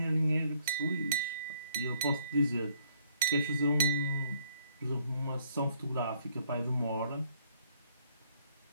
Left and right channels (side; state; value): both; inverted; correlation -0.66